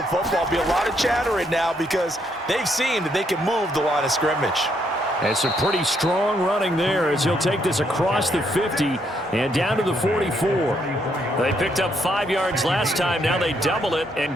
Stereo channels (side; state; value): both; normal; correlation 0.74